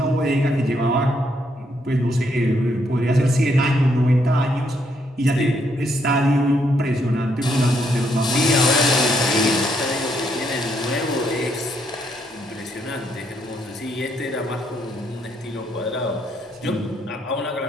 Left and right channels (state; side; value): normal; both; correlation 0.74